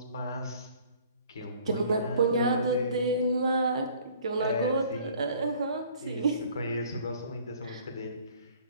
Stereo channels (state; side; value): inverted; both; correlation -0.54